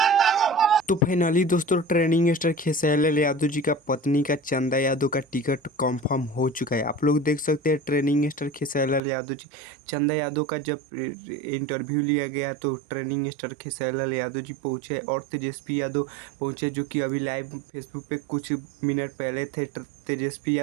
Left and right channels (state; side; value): drops out; left; at 9.0 s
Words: तो फाइनली दोस्तों ट्रेनिंग स्टार खेसारी लाल यादव जी का पत्नी का चंदा यादव का टिकट कंफर्म हो चुका है। आप लोग देख सकते हैं ट्रेनिंग स्टार खेसारी लाल यादव जी, चंदा यादव का जब इंटरव्यू लिया गया तो ट्रेनिंग स्टार खेसारी लाल यादव जी पहुंचे और तेजस्वी यादव पहुंचे, जो कि अभी लाइव फेसबुक पे कुछ मिनट पहले थे। तेजस्वी